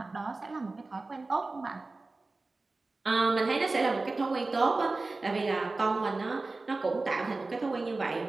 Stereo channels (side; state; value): left; quieter; 3.4 dB